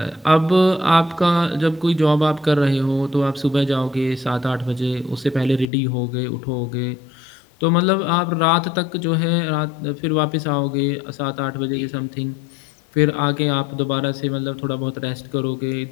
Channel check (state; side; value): drops out; right; at 5.7 s